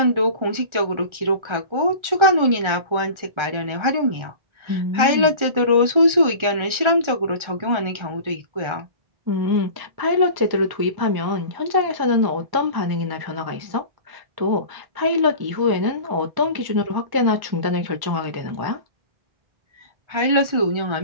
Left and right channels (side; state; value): left; late; 1.4 ms